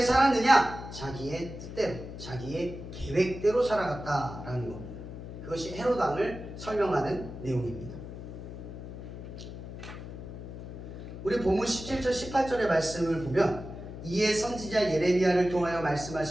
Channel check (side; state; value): left; noise; hum, 10 dB below the sound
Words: 살았느냐? 자기의 뜻대로, 자기의 계획대로 살아갔다라는 겁니다. 그것이 헤롯 왕을 설명하는 내용입니다. 우리 본문 17절 18절의 말씀을 보면 이에 선지자 예레미야를 통하여